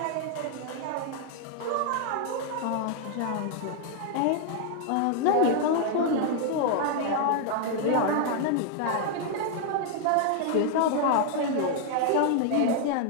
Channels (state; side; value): different; both; correlation 0.00